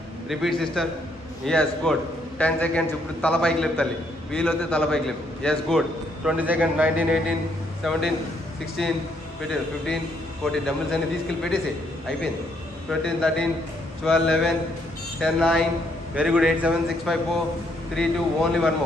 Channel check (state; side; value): normal; both; correlation 0.71